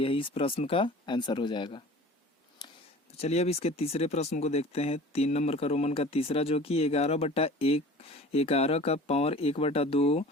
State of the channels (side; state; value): both; normal; correlation 0.42